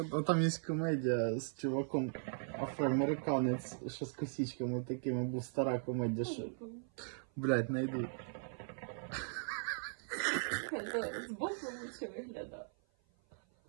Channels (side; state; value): left; silent; 52 dB below the other